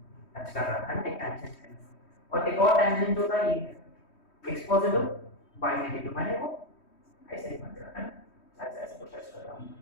टच कर रहा है ना, एक टैंजेंट है, और एक और टैंजेंट होता है ये है x पॉजिटिव y नेगेटिव, माने वो ऐसे ही बन रहा है ना, ऐसे ऐसे कुछ टच कर रहा हूं,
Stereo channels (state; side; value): late; right; 3.1 ms